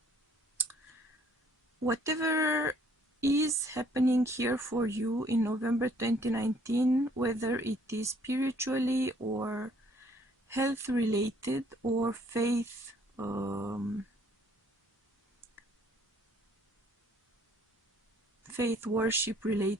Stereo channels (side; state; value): both; normal; correlation 0.61